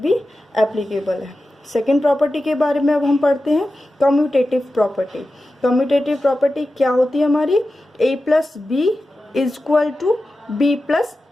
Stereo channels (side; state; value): both; normal; correlation 0.93